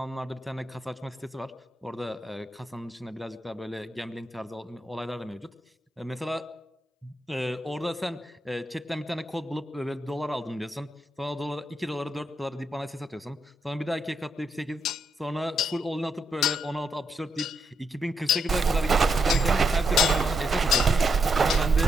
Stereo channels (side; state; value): both; normal; correlation 0.80